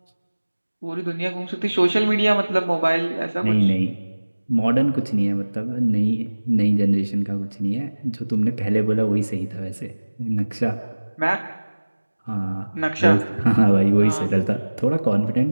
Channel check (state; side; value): inverted; both; correlation -1.00